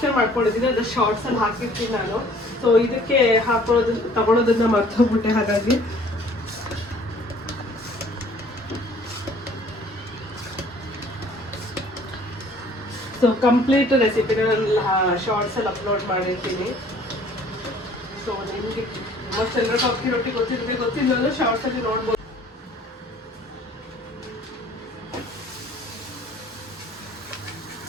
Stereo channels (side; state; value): both; normal; correlation 0.55